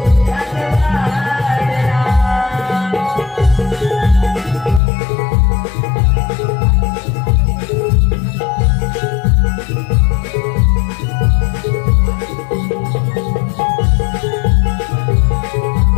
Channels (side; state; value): right; drops out; at 4.8 s